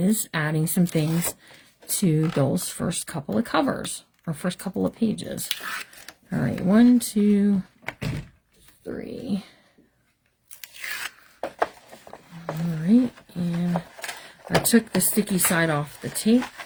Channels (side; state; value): both; identical; correlation 1.00